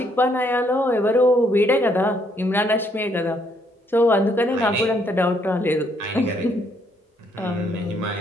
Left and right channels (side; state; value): both; normal; correlation 0.70